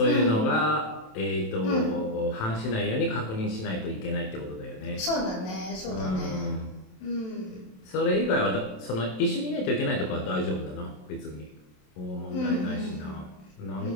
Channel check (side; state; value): right; late; 27 ms